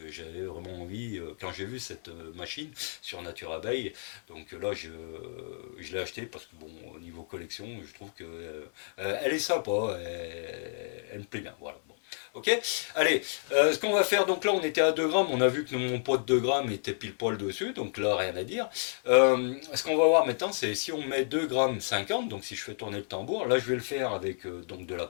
j'avais vraiment envie, quand j'ai vu cette machine sur Nature Abeille, donc là je l'ai acheté parce que bon, au niveau collection, je trouve que elle est sympa, elle me plaît bien. Voilà. Bon. Ok, allez, ce qu'on va faire, donc là on était à 2 grammes, on a vu que mon pot de 2 grammes était pile poil dessus, donc là rien à dire. Ce qu'on va voir maintenant, c'est si on met 2 grammes 50, donc si je fais tourner le tambour, là je vais le faire avec donc de la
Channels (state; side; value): silent; right; digital silence